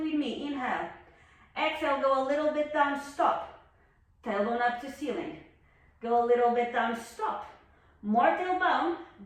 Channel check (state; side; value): identical; both; correlation 1.00